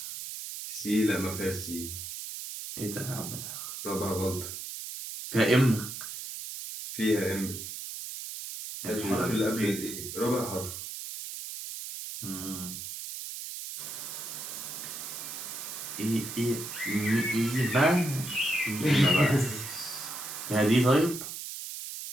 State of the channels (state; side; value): noise; right; hiss, 8 dB below the sound